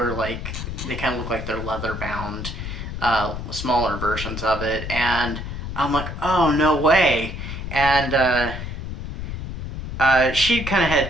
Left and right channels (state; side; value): noise; left; rumble, 7 dB below the sound